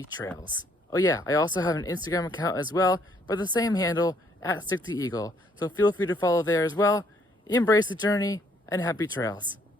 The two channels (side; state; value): both; normal; correlation 0.66